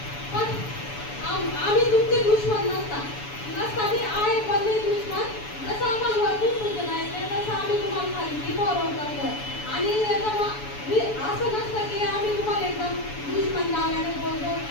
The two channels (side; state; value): right; late; 7.0 ms